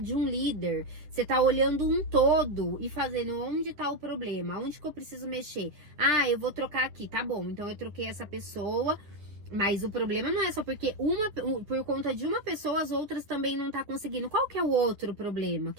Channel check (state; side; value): late; left; 10 ms